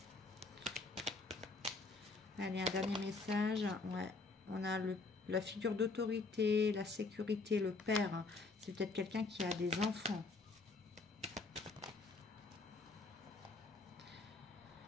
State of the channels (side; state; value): right; quieter; 3.8 dB